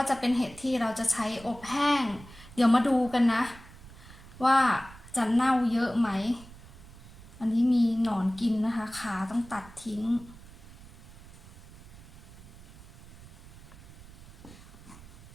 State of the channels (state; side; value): noise; right; rumble, 19 dB below the sound